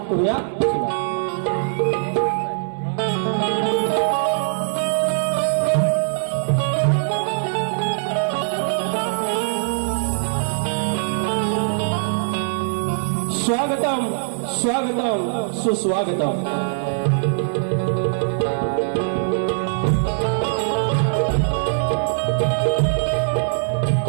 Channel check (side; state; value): left; silent; digital silence